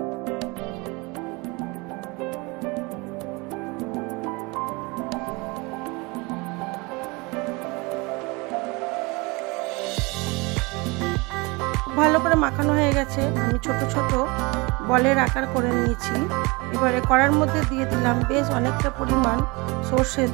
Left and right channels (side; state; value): left; quieter; 26.3 dB